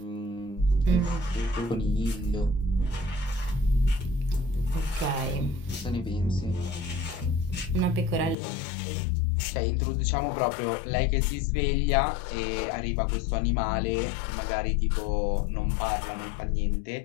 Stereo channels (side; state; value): right; drops out; at 8.3 s